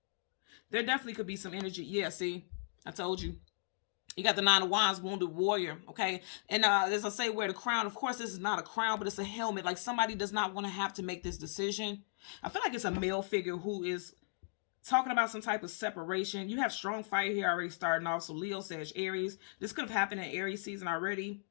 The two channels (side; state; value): right; silent; digital silence